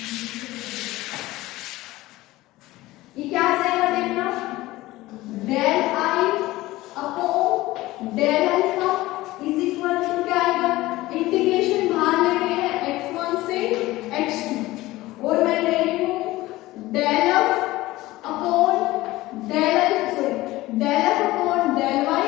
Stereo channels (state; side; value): quieter; right; 18.1 dB